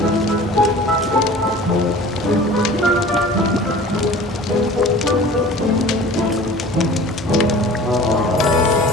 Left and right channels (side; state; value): both; normal; correlation 0.43